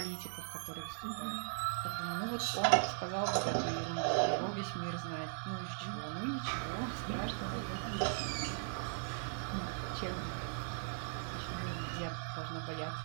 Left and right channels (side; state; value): left; silent; digital silence